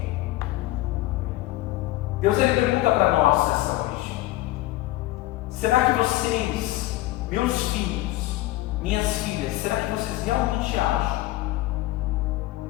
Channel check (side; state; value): right; quieter; 17.4 dB